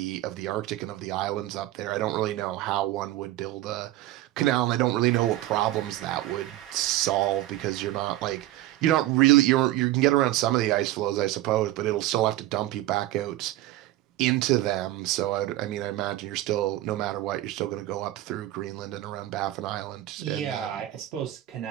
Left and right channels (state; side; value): quieter; left; 15.5 dB